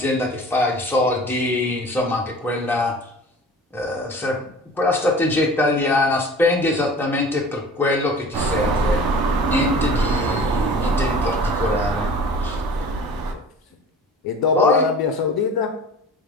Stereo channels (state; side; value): normal; both; correlation 0.42